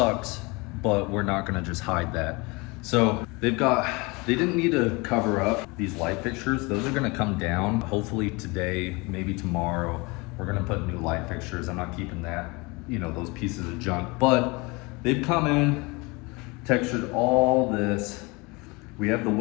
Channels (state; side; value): quieter; right; 26.2 dB